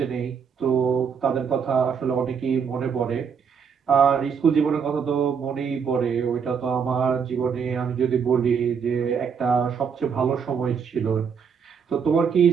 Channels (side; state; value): left; quieter; 6.6 dB